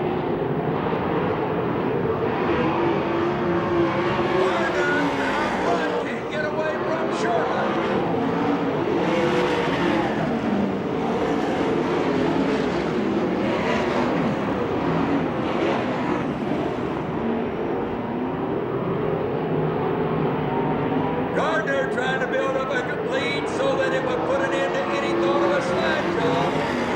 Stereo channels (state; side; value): identical; both; correlation 1.00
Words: Gardner out front, can't get away from Sherman. Gardner trying to build up a lead so that it would put an end to any thought of a slide job. He